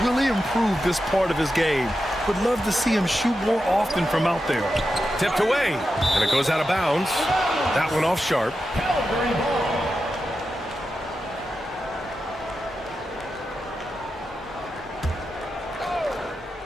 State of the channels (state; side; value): normal; both; correlation 0.89